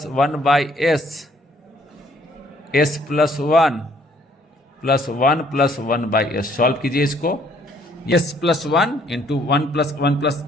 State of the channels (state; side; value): normal; both; correlation 0.63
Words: 1/S, S+1 + 1 + 1/S। Solve कीजिए इसको, S+1 इंटू 1 +